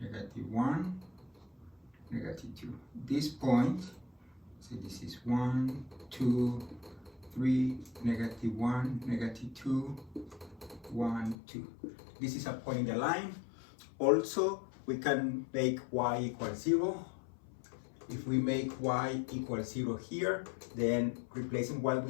-1, -2. This point, so this is 1, 2, 3, -1, -2, 1, 2. This is a point in the line. Also, we can make y equals 0. If we make y equals 0 here, then replacing y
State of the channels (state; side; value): drops out; right; at 11.4 s